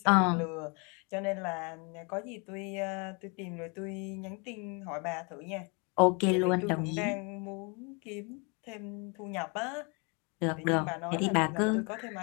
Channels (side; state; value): right; quieter; 32.6 dB